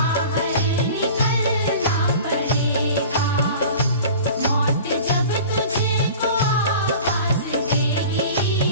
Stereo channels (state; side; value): inverted; both; correlation -0.40